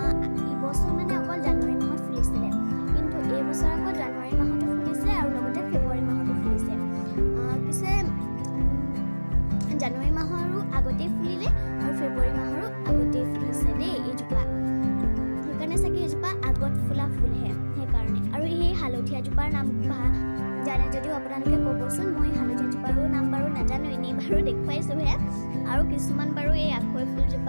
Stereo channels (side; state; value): both; inverted; correlation -1.00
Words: ইবছৰ মানে অকল জানুৱাৰী মাহত ফুলিছিলে, কিন্তু এইবছৰ আকৌ জানুৱাৰী মাহতো ফুলিছে আৰু লগতে ফেব্ৰুৱাৰী মাহতো ফুলিছে। পিছে জানুৱাৰী মাহৰো আগতেই ফুলিলে আৰু ফেব্ৰুৱাৰী মাহৰো আগতেই ফুলিছে দেই এইজোপা। সেইকাৰণে চাগে এইজোপা আগত ফুলা ফুলহে, সেইকাৰণে। আৰু সেই হালধীয়াজোপাৰ নাম জানে যদিও আপোনালোকে ক'বচোন। মই হালধীয়াজোপাৰো নাম বাৰু নাজানো, এনেই বাৰু দেখুৱাইছোঁহে। আৰু কিছুমান বাৰু এই আখৈ